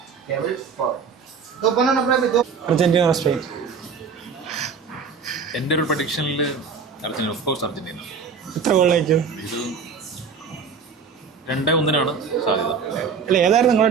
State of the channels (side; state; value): left; quieter; 5.6 dB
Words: Argentina or Spain? എൻ്റെ ഒരു പ്രഡിക്ഷനിൽ അർജന്റീന, ഓഫ് കോഴ്സ് അർജന്റീന. എത്ര ഗോൾ വയ്ക്കും? ഇത് 2-1 സാധ്യത. അല്ല ഏതായിരുന്നു